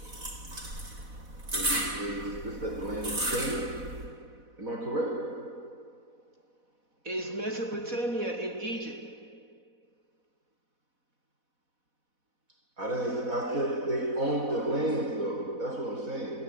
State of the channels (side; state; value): left; late; 4.1 ms